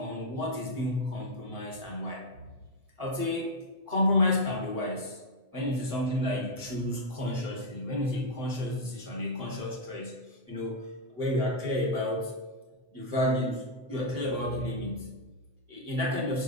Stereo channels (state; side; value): late; left; 7.9 ms